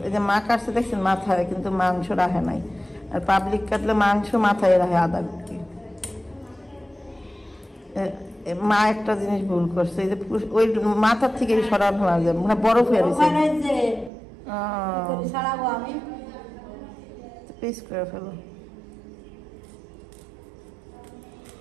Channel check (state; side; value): drops out; left; at 14.1 s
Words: এই যে মা কাটছে দেখছেন মাথায়, কিন্তু মাংস রাখে নাই। আর পাবলিক কাটলে মাংস মাথায় রাখে আদা গুটি। মা একটা জিনিস ভুল করছে, এই যে ওই মাথার থেকে সরানো হয়ে যায়, মানে বরফ হয়ে গেছে। ছাড়াবো আমি পিস করে ফেলো।